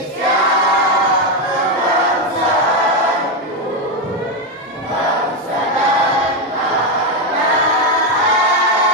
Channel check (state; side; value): normal; both; correlation 0.07